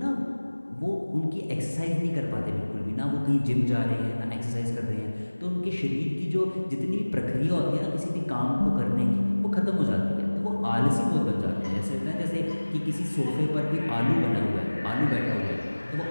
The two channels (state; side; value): inverted; both; correlation -1.00